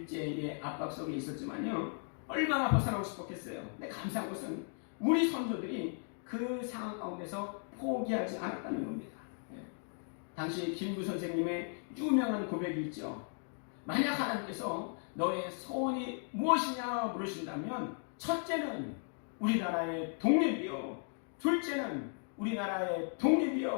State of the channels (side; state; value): right; silent; 54 dB below the other